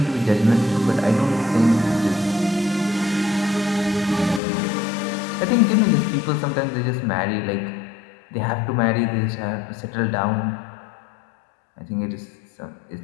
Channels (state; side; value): drops out; right; at 4.4 s